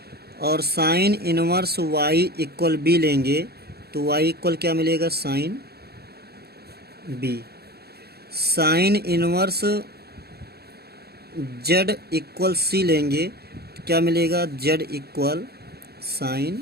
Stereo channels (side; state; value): left; late; 0.46 ms